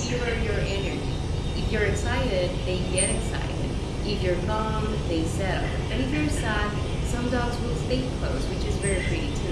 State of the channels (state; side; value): identical; both; correlation 1.00